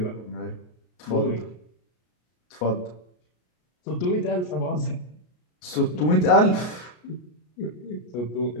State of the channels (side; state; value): right; late; 33 ms